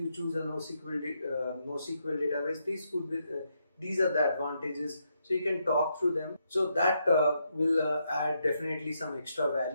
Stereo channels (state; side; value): inverted; both; correlation -0.79